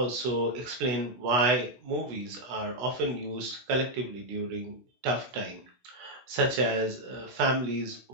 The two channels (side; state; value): left; late; 16 ms